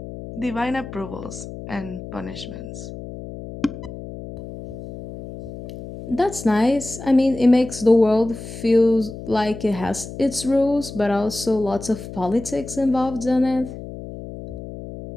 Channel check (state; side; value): noise; left; hum, 11 dB below the sound